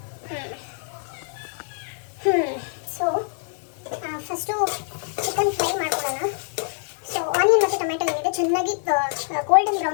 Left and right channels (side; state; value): right; silent; 55 dB below the other